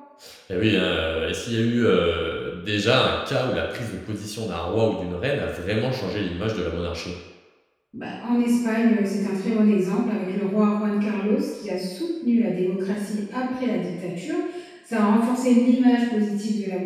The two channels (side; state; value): both; identical; correlation 1.00